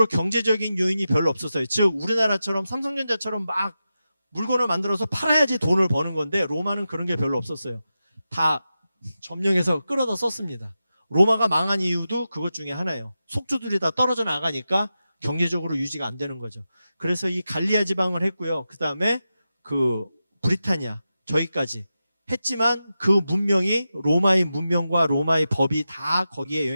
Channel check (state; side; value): inverted; both; correlation -0.91